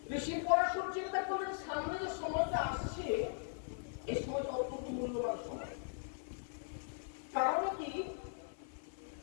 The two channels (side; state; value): right; silent; 51 dB below the other